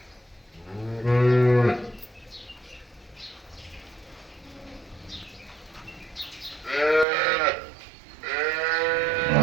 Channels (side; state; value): left; drops out; at 7.1 s